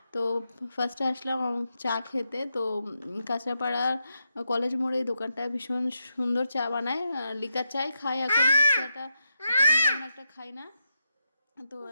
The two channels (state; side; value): inverted; both; correlation -0.85